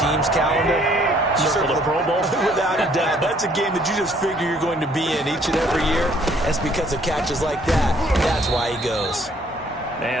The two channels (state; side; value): normal; both; correlation 0.62